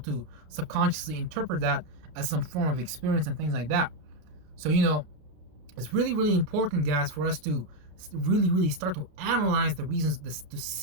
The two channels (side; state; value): left; late; 33 ms